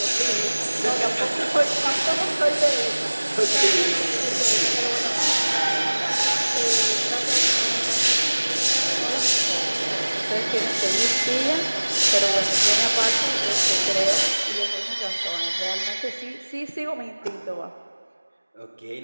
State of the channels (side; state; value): both; inverted; correlation -1.00